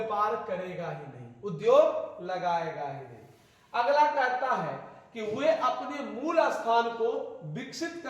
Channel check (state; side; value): identical; both; correlation 1.00